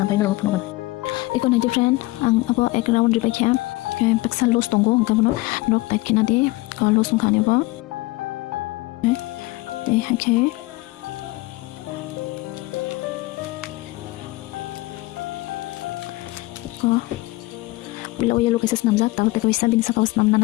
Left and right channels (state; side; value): quieter; right; 20.8 dB